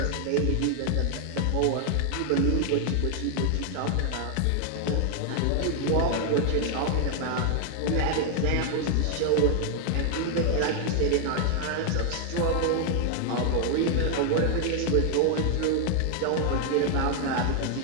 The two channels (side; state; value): both; different; correlation 0.00